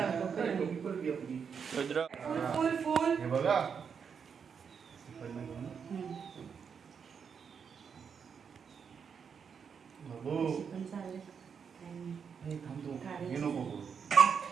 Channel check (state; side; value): quieter; left; 6.6 dB